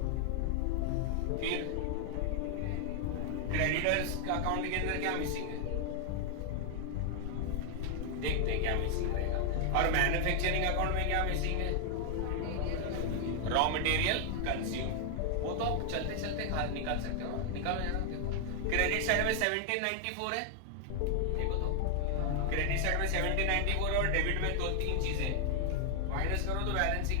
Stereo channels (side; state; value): both; different; correlation 0.00